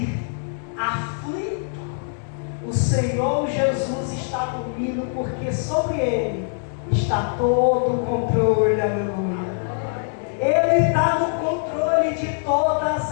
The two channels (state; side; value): silent; right; digital silence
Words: aflitos, o Senhor Jesus está dormindo, porque sobre Ele está todo o controle, aleluia. Ele está no controle de todas